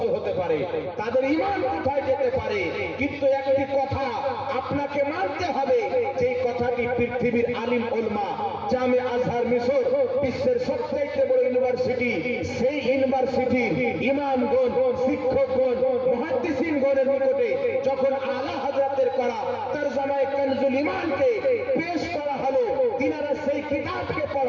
হতে পারে, তাদের ঈমান কোথায় যেতে পারে। কিন্তু একটি কথা আপনাকে মানতে হবে, যে কথাটি পৃথিবীর আলিম উলামা, জামে আজহার মিশর বিশ্বের সবচেয়ে বড় ইউনিভার্সিটি, সেই ইউনিভার্সিটির ইমামগণ, শিক্ষকগণ, মুহাদ্দিসিনগণের নিকটে যখন আলা হযরতের করা তরজমায়ে কানজুল ঈমানকে পেশ করা হলো, তিনারা সেই কিতাবকে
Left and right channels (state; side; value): identical; both; correlation 1.00